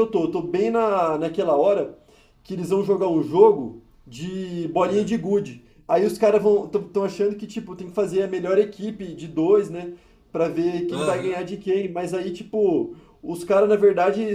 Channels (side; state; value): both; identical; correlation 1.00